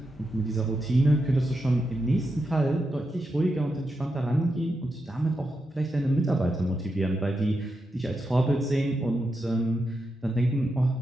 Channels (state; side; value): normal; both; correlation 0.86